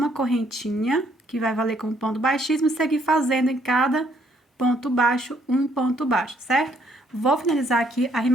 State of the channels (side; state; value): both; normal; correlation 0.68